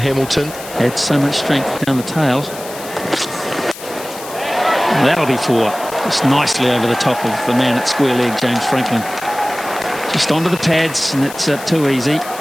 Had so much strength down the tail. That'll be 4. Just nicely over the top of the man at square leg, James Franklin. Just onto the pads, and it's too easy.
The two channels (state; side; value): noise; left; hiss, 14 dB below the sound